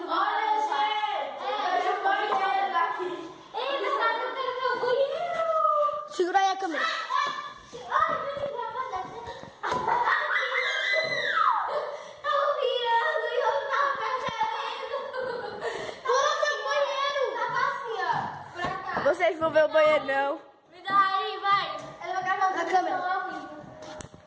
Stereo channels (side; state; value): both; identical; correlation 1.00